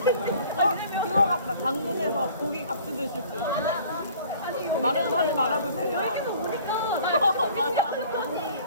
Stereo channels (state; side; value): inverted; both; correlation -0.50